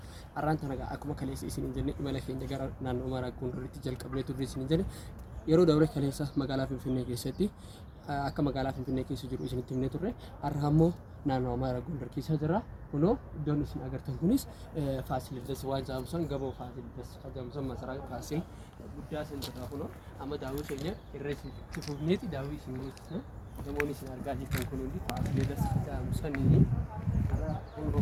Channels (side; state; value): both; identical; correlation 1.00